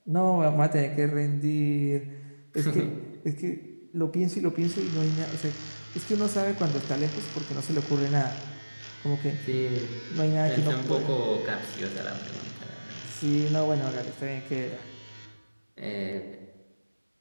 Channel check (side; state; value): both; inverted; correlation -1.00